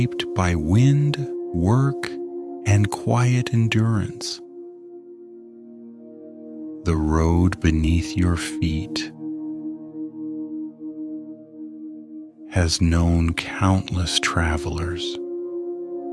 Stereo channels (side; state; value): both; identical; correlation 1.00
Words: by wind, work, and quiet endurance. The road beneath your feet has known countless travelers,